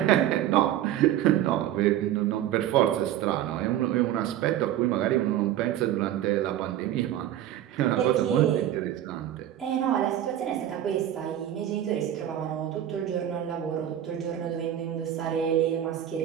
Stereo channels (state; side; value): quieter; left; 11.8 dB